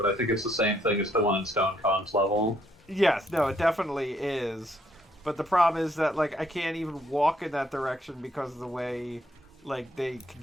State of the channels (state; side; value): normal; both; correlation 0.70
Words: I think it's the same thing as the one in Stone Kong's level. Yes, no, it definitely is. But the problem is that like I can't even walk in that direction because of the way like the